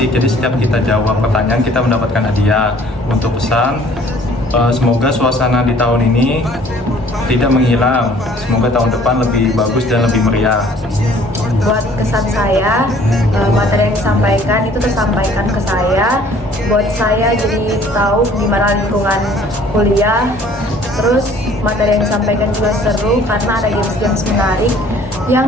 jadi setiap kita jawab pertanyaan kita mendapatkan hadiah. Untuk pesan, semoga suasana di tahun ini tidak menghilang, semoga tahun depan lebih bagus dan lebih meriah. Buat kesan saya, materi yang disampaikan itu tersampaikan ke saya, buat saya jadi tahu gimana lingkungan kuliah. Terus materi yang disampaikan juga seru karena ada games-games menarik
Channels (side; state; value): both; normal; correlation 0.55